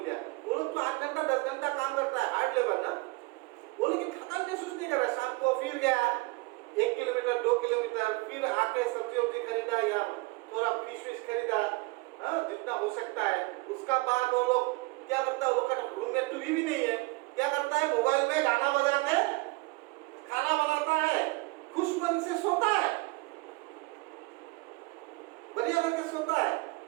दिया, वो लोग तो 8 घंटा 10 घंटा काम करता है, हार्ड लेबर ना, वो लेकिन थकान महसूस नहीं कर रहा। शाम को फिर गया 1 किलोमीटर 2 किलोमीटर, फिर आके सब्जी वब्जी खरीदा या थोड़ा फिश खरीदा, जितना हो सकता है। उसका बाद वो लोग क्या करता है, वो लोग का रूम में टीवी भी नहीं है, क्या करता है, मोबाइल में गाना बजा के खाना बनाता है, खुश मन से सोता है, बढ़िया करके सोता है।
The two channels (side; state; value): left; quieter; 24.5 dB